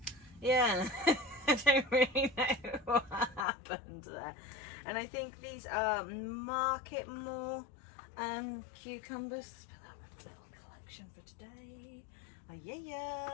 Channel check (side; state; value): right; drops out; at 3.5 s